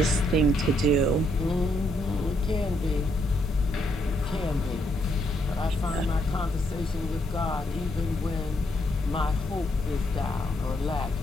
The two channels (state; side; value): normal; both; correlation 0.75